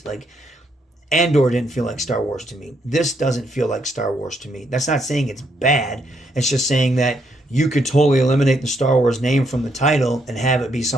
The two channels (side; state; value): both; normal; correlation 0.75